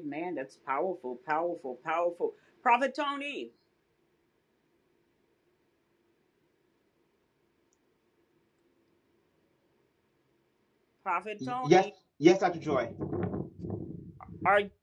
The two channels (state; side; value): identical; both; correlation 1.00